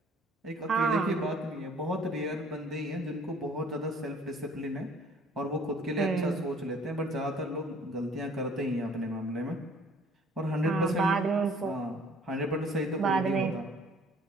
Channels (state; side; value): normal; both; correlation 0.55